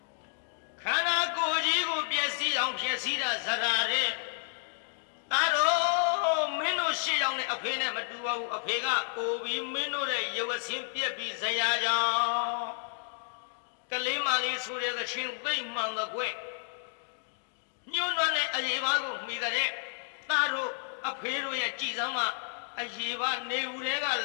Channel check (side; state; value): right; silent; 57 dB below the other